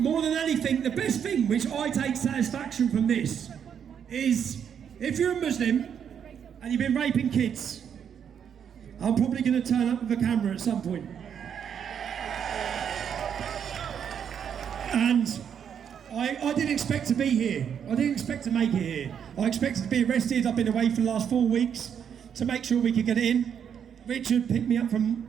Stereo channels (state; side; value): quieter; left; 8.1 dB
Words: than anything, the best thing which I take satisfaction from this is if you're a Muslim and you've been raping kids, I'm probably going to turn up with a camera at some point. And I didn't expect to be here. I didn't expect to make it here. I expected to be arrested. I've been away for the last 4 weeks to make sure we could get it in. Richard picked me up from